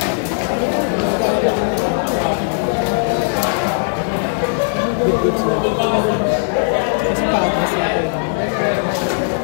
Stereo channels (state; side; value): silent; right; 61 dB below the other